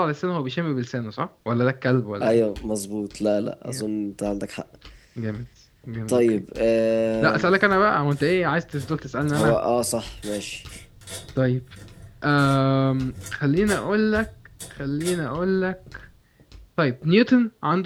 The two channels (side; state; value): both; identical; correlation 1.00